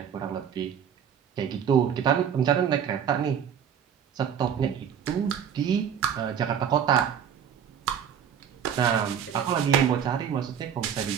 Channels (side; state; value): left; quieter; 8.4 dB